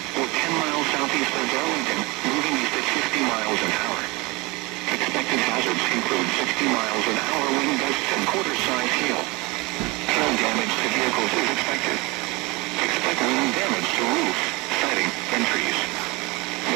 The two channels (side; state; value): left; quieter; 24.7 dB